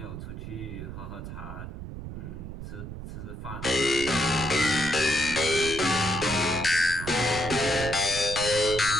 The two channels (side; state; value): right; noise; rumble, 9 dB below the sound